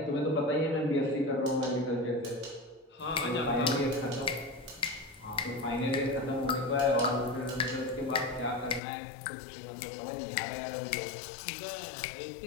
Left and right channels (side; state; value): right; drops out; at 8.8 s